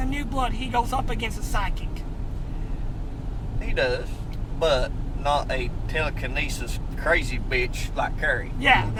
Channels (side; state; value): both; identical; correlation 1.00